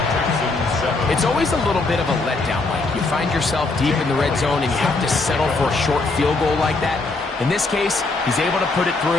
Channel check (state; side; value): quieter; right; 3.5 dB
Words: It's always a little bit of a letdown, Mike. You find yourself deep in the red zone and you have to settle for a short field goal like that. In this case, he's able to put it